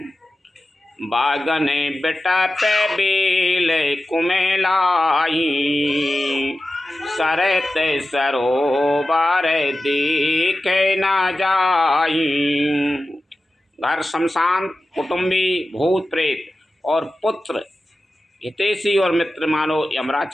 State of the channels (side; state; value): both; normal; correlation 0.94